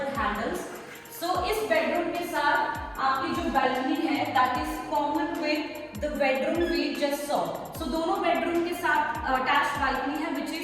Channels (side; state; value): both; identical; correlation 1.00